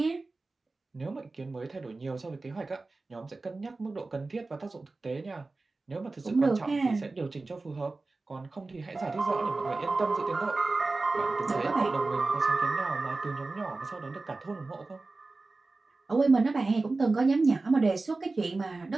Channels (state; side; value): quieter; left; 3.5 dB